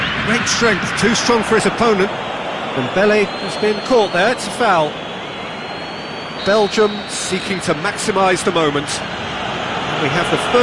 Great strength, too strong for his opponent. Dembele has been caught there, it's a foul. Belgium seeking to maximise the moment. We have the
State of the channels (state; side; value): identical; both; correlation 1.00